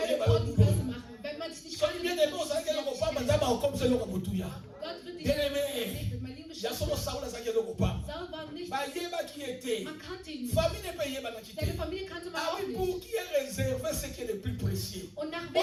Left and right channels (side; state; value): both; identical; correlation 1.00